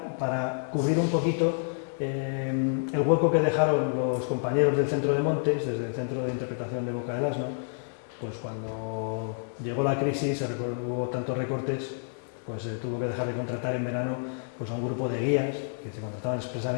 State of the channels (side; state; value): right; silent; digital silence